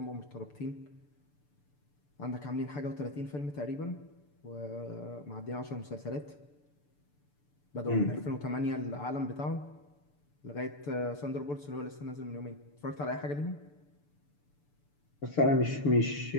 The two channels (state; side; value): late; right; 6.9 ms